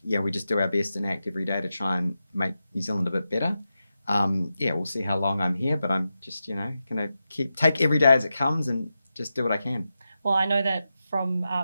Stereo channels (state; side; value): inverted; both; correlation -0.90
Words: we just do our best and ACT every day to try and make New Zealand a bit better. We'll see how long I'm here, but I'm just, going to take every day as it comes and just do what I can. Well, I know that from